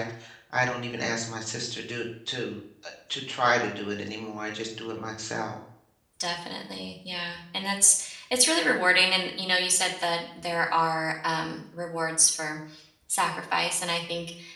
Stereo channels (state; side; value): identical; both; correlation 1.00